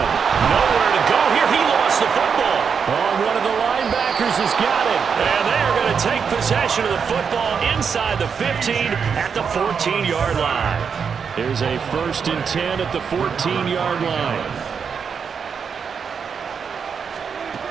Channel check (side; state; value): left; quieter; 6.4 dB